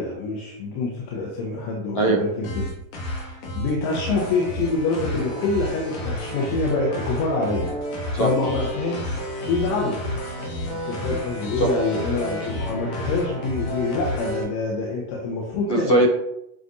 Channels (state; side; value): late; right; 11 ms